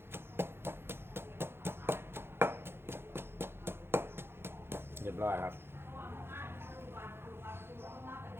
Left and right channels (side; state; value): left; late; 0.11 ms